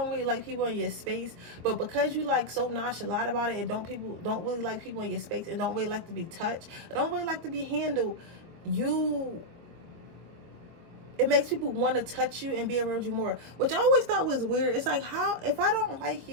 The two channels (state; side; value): late; left; 24 ms